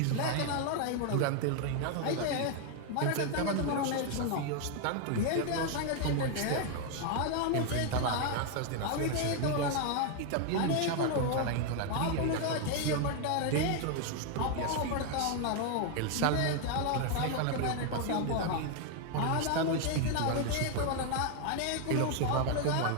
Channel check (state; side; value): different; both; correlation 0.00